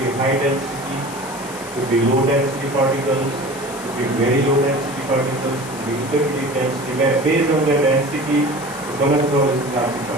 high density, could be low density particles, could be very low density particles, could be intermediate density. Based on their density, the cholesterol is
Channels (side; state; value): left; noise; hiss, 15 dB below the sound